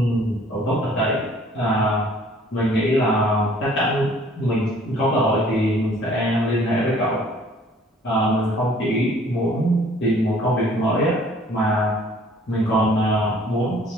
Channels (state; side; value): normal; both; correlation 0.56